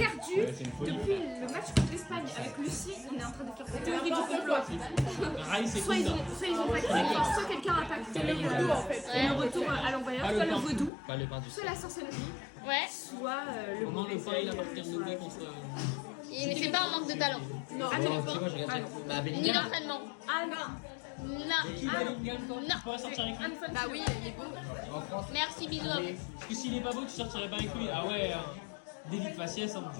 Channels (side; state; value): right; drops out; at 10.9 s